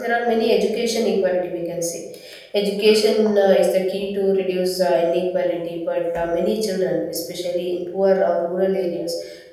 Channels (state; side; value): identical; both; correlation 1.00